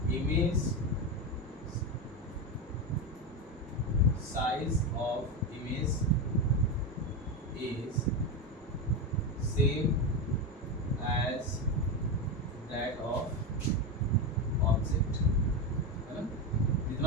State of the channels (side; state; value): both; normal; correlation 0.14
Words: image size of image is same as that of object, है ना।